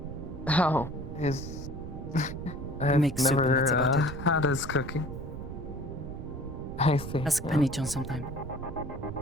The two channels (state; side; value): noise; right; rumble, 9 dB below the sound